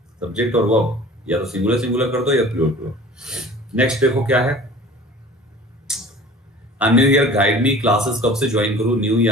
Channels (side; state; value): both; normal; correlation 0.44